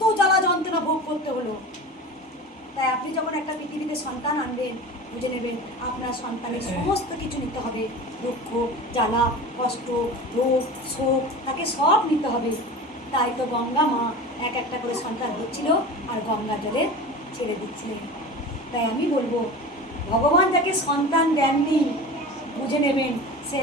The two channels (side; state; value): both; normal; correlation 0.33